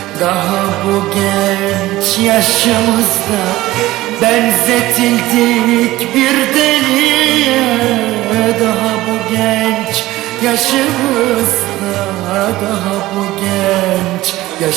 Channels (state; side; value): quieter; left; 17.1 dB